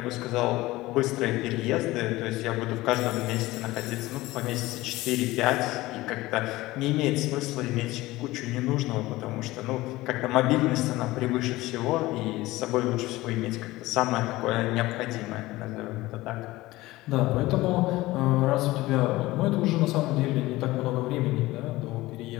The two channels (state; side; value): quieter; right; 18.7 dB